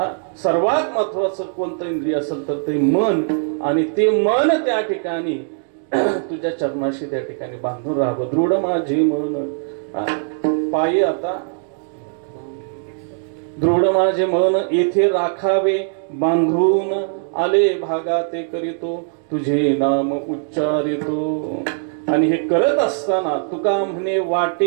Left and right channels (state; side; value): silent; left; digital silence